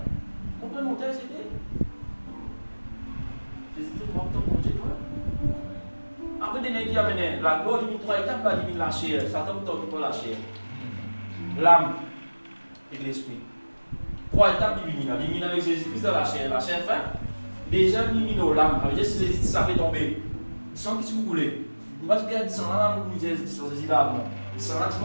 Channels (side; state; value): both; inverted; correlation -1.00